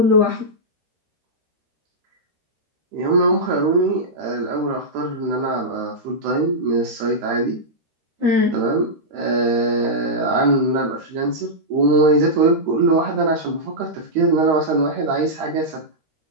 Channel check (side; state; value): left; late; 13 ms